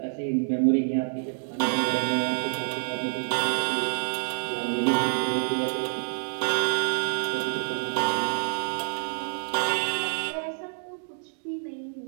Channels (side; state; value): left; silent; digital silence